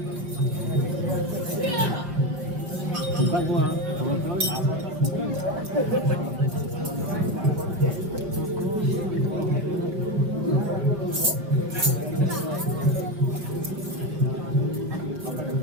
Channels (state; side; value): late; left; 5.2 ms